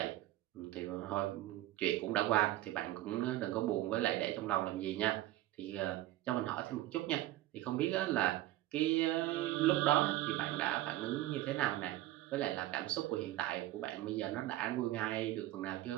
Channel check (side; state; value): left; quieter; 15.3 dB